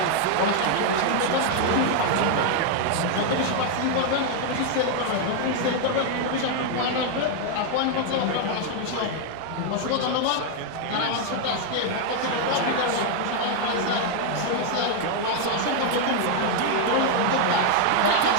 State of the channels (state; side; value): different; both; correlation 0.00